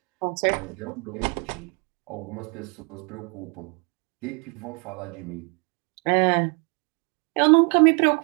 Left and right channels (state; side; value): quieter; left; 34.7 dB